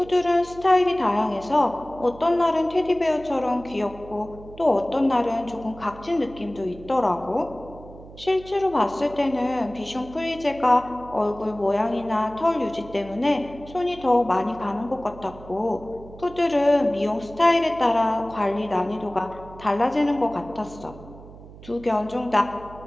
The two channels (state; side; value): noise; right; hum, 18 dB below the sound